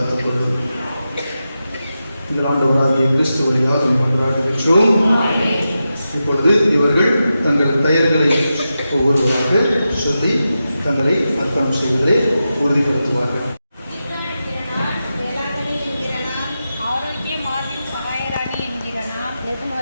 கொள்ளும். எங்கள் ஆண்டவராகிய கிறிஸ்து வழியாக கொண்டாடுகின்றோம். இப்பொழுது இவர்கள் தங்கள் பெயர்களை ஒவ்வொருவராக சொல்லி தங்களை அர்ப்பணம் செய்வதை உறுதிப்படுத்துவார்கள். ஆரோக்கிய மார்பின் சகாயராணி என்கிற நான்,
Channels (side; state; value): both; inverted; correlation -0.90